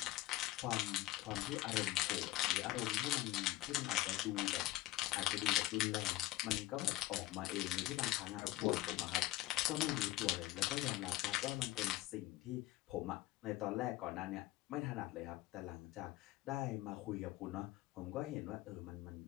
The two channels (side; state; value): right; quieter; 17.0 dB